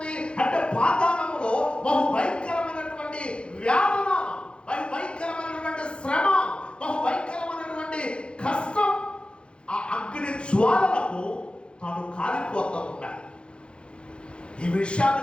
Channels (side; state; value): right; late; 0.056 ms